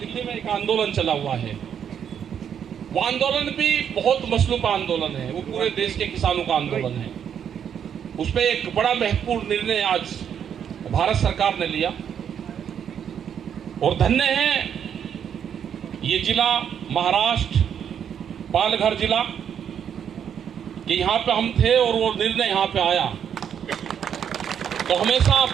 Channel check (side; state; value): left; quieter; 8.4 dB